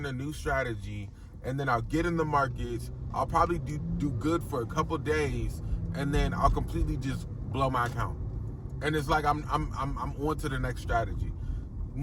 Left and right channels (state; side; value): identical; both; correlation 1.00